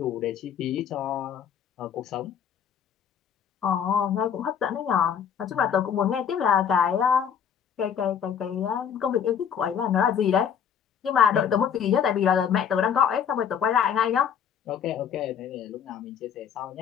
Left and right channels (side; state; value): right; quieter; 8.0 dB